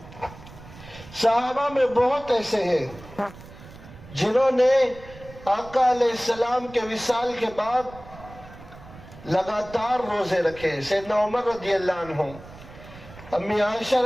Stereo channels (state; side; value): noise; right; rumble, 18 dB below the sound